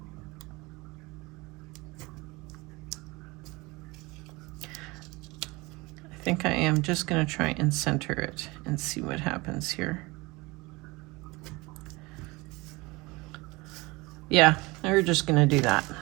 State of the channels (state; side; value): quieter; left; 23.3 dB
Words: I think I am just going to try and center it and see what happens here. Yeah, we're just going to do that.